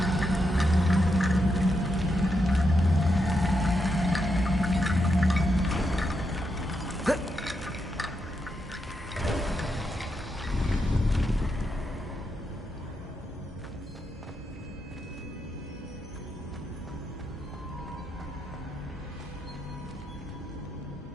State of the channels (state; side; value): normal; both; correlation 0.83